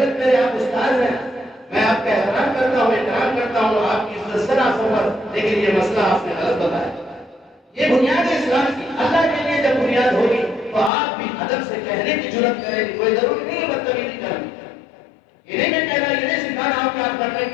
میرے آپ استاد ہیں، میں آپ کا احترام کرتا ہوں، احترام کرتا ہوں، آپ کی عزت سے نہ سفر، لیکن یہ مسئلہ آپ نے غلط بتایا۔ یہ بنیاد ہے اسلام کی، اللہ کے لیے جب بنیاد ہوگی تو آپ بھی ادب سے کہنے کی جرأت کریں گے، کوئی ضروری نہیں ہے بدتمیزی کرنی، یہ نہیں میں کہہ رہا، یہ نہیں سکھا رہا ہوں کہ آپ کرنے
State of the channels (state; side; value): drops out; right; at 10.9 s